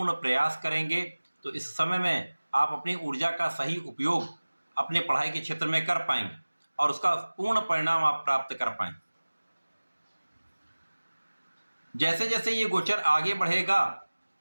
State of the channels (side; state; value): both; inverted; correlation -1.00